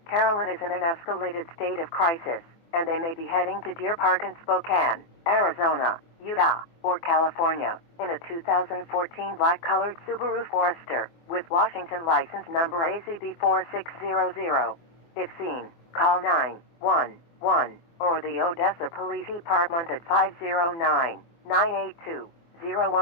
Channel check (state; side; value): late; right; 24 ms